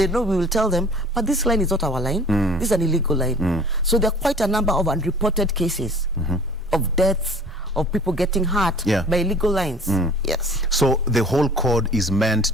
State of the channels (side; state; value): both; normal; correlation 0.48